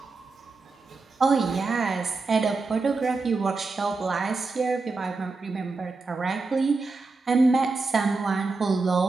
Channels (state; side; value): quieter; left; 3.9 dB